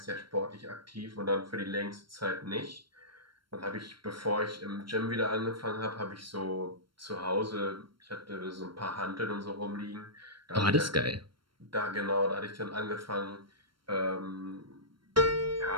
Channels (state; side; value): late; left; 0.73 ms